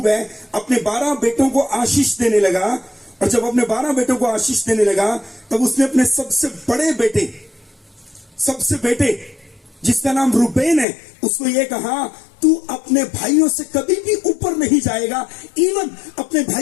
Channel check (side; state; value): right; drops out; at 10.9 s